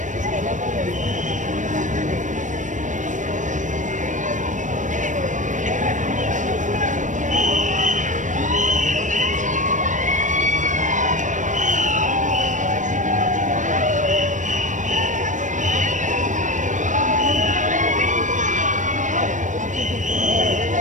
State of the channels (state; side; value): late; left; 0.37 ms